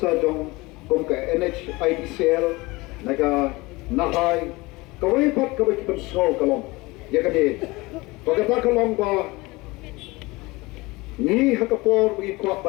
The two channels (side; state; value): right; quieter; 22.7 dB